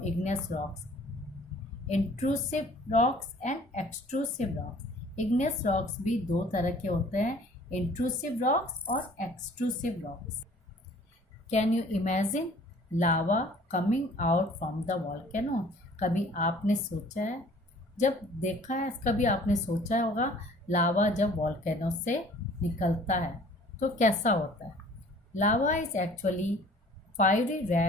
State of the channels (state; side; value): normal; both; correlation 0.52